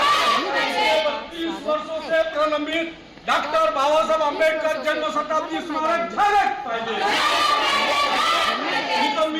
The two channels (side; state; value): both; identical; correlation 1.00